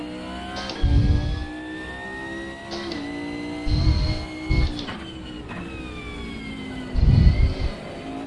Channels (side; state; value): both; identical; correlation 1.00